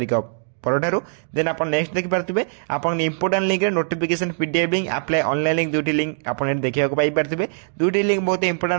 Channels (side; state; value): left; silent; digital silence